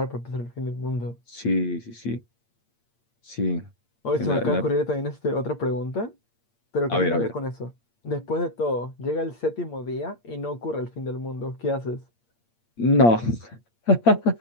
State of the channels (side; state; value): right; late; 8.7 ms